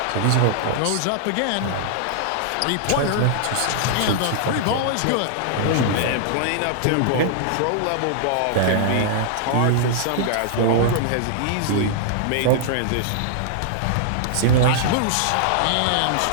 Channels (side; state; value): both; different; correlation -0.01